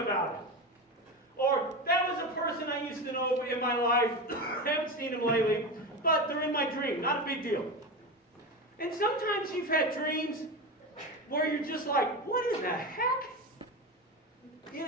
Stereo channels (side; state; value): both; normal; correlation 0.21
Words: it. Or that was a person I used to know in my life, haven't seen him lately, but they're in my dream, not a big deal. And sometimes you've had dreams where you're just like, what in the heck?